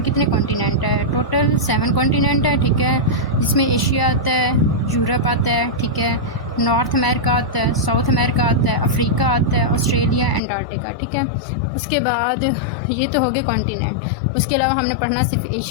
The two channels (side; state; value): right; drops out; at 10.4 s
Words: कितने कॉन्टिनेंट है। टोटल 7 कॉन्टिनेंट है, ठीक है, जिसमें एशिया आता है, यूरोप आता है, ठीक है, नॉर्थ अमेरिका आता है, साउथ अमेरिका आता है, अफ्रीका आता है, ऑस्ट्रेलिया, एंटार्क्टिका, ठीक है। उसके बाद ये तो हो गए कॉन्टिनेंट। उसके अलावा हमने पढ़ना सिर्फ